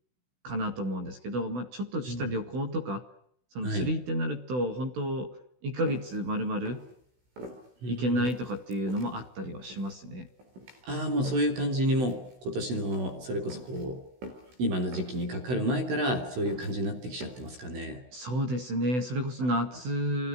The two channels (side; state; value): left; late; 16 ms